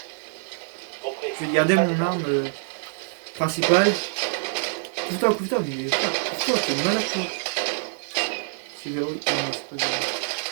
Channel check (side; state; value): left; silent; digital silence